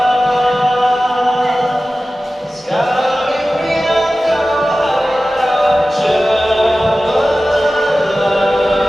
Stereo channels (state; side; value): normal; both; correlation 0.96